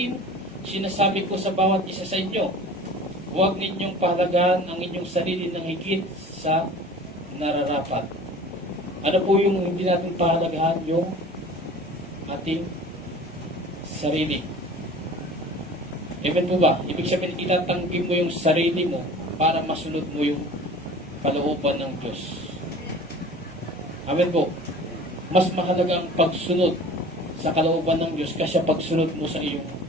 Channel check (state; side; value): normal; both; correlation 0.43